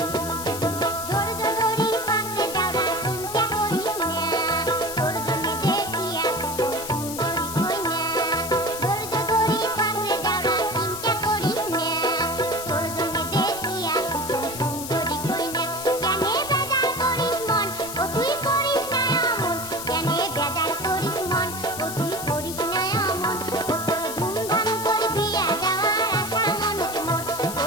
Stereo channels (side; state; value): left; noise; hiss, 8 dB below the sound